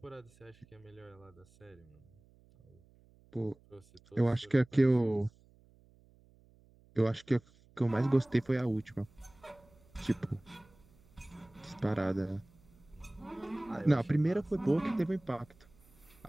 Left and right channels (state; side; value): noise; right; hum, 28 dB below the sound